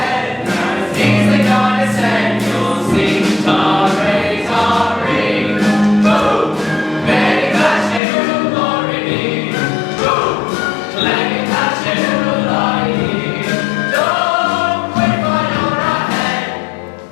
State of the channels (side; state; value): right; drops out; at 8.0 s